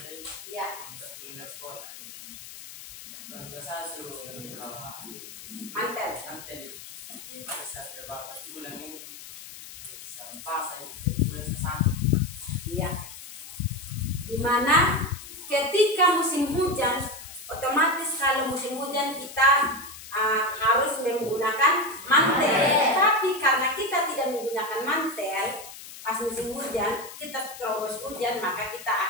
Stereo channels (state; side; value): noise; left; hiss, 14 dB below the sound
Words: ya, untuk pindah sekolah ini. Keluarga saya suruh bawa mantel. nanti ini bisa terbatas bulan ini bisa pas saya bulan sesakit. Ya. Dimana ketika musim hujan, otomatis kalau musim hujan kita harus menggunakan mantel. Tapi karena kita tidak menggunakan mantel pas musim hujan, kita terobos hujan, maka kita